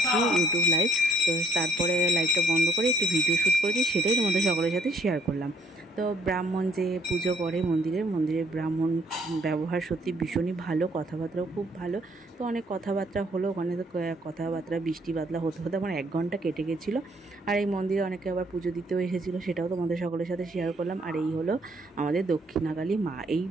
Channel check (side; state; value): both; normal; correlation 0.65